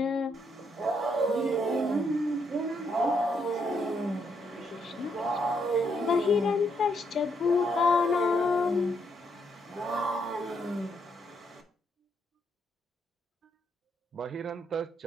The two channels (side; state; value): both; normal; correlation 0.75